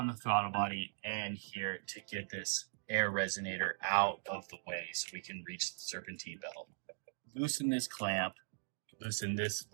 the throttle body and here to get this air resonator out of the way so we can reach the serpentine belt. Loosen this clamp, loosen this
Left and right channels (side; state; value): left; silent; digital silence